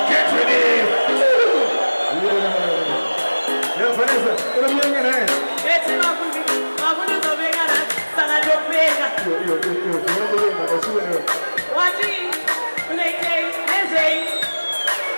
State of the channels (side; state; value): both; inverted; correlation -1.00